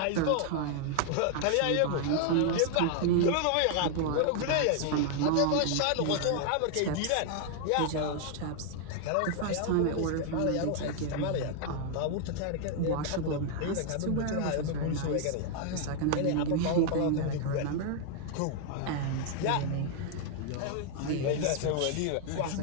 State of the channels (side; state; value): both; different; correlation 0.00